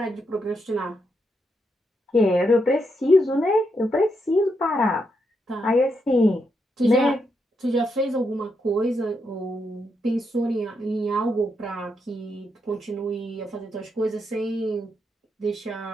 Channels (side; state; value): both; normal; correlation 0.81